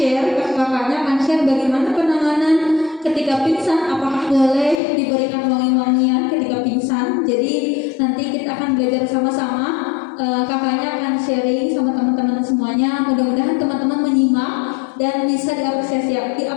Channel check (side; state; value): right; drops out; at 4.8 s